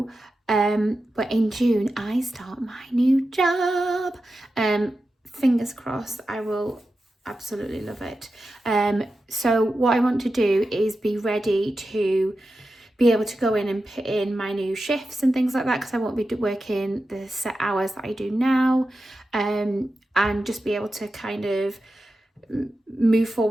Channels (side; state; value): both; normal; correlation 0.92